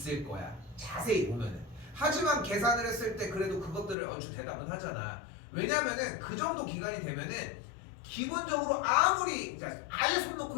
거야. 자세히 보면은. 하지만 계산을 했을 때 그래도 그것들을 얼추 대답은 하잖아. 왜냐면은 그 정도 기간이 되면은 기본적으로 아무리 아예 손 놓고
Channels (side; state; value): right; drops out; at 4.0 s